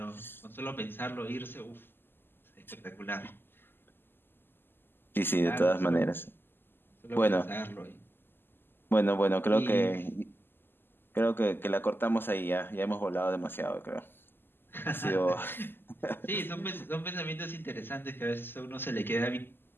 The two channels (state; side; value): late; right; 0.099 ms